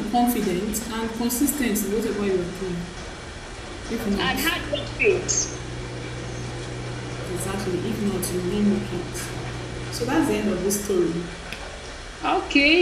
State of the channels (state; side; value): identical; both; correlation 1.00